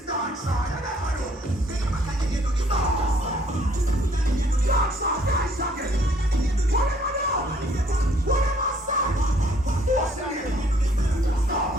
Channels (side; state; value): both; normal; correlation 0.63